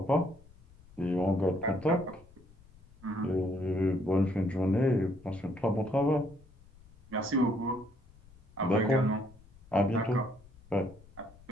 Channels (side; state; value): left; noise; rumble, 24 dB below the sound